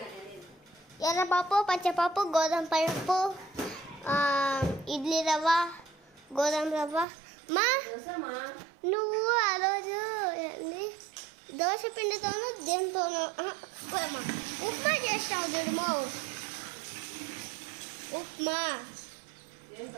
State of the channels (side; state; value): left; drops out; at 7.1 s